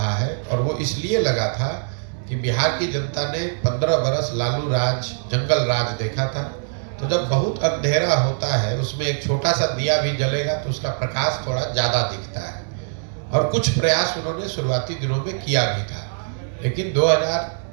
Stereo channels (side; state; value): left; silent; digital silence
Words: है, और वो इसलिए लगा था कि बिहार की जनता ने 15 बरस लालू राज, जंगल राज देखा था। तो जब बहुत अंधेरा होता है उसमें एक छोटा सा दिया भी जलेगा तो उसका प्रकाश थोड़ा ज़्यादा दिखता है, और कुछ प्रयास उन्होंने शुरुआती दिनों में किया भी था। लेकिन